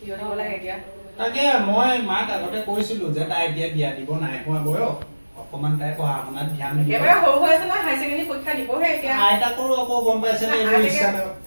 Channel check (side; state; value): both; inverted; correlation -1.00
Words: দিব লাগে এতিয়া তাকে মই মাক আগতে কৈছিলো যে তাই এতিয়া বিয়া দিব নাই হোৱা বয়স অকমান তাই পঢ়া শুনাত ধ্যান দিব একেবাৰে সৰু হৈ আছে ন হাই ছেকেণ্ডেৰী পৰীক্ষা দিবহে এতিয়া আইতাকৰো আকৌ গম পাইছে নে এইবোৰ ইচ্ছা